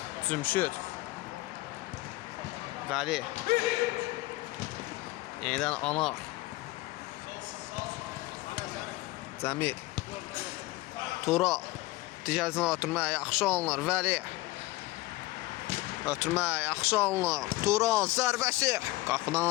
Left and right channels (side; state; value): right; quieter; 19.8 dB